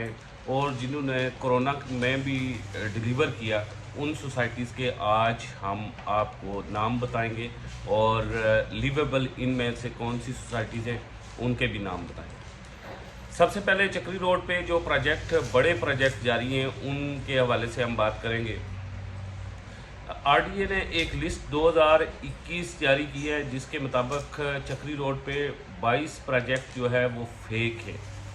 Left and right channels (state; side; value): identical; both; correlation 1.00